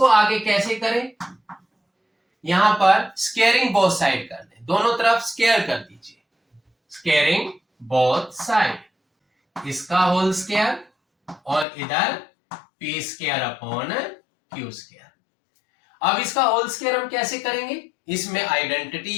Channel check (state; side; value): drops out; right; at 11.7 s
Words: आगे कैसे करें? यहां पर स्केयरिंग बोथ साइड कर दें, दोनों तरफ स्केयर कर दीजिए। स्केयरिंग बोथ साइड, इसका होल स्केयर और इधर P square upon Q square. अब इसका होल स्केयर हम कैसे करेंगे? इसमें